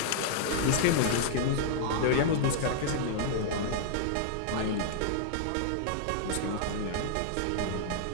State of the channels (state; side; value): different; both; correlation -0.01